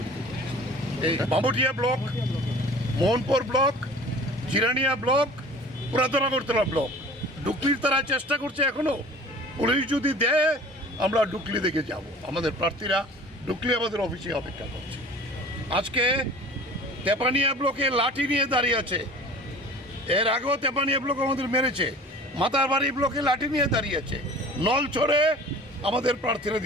করছি। এই Bamutia block, Mohanpur block, Jirania block, পুরাতন আগরতলা ব্লক, ডুকলির তারা চেষ্টা করছে এখনো। পুলিশ যদি দেয় আমরা ডুকলি দেখে যাব। আমাদের প্রার্থীরা ডুকলি আমাদের অফিসে অপেক্ষা করছে। আজকে তেপানিয়া ব্লকে লাঠি নিয়ে দাঁড়িয়ে আছে। এর আগেও তেপানিয়া ব্লক আমাদের মেরেছে। মাতারবাড়ি ব্লকে লাঠি নিয়ে দাঁড়িয়ে আছে। নলছড়ে আমাদের প্রার্থীরা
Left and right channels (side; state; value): both; normal; correlation 0.43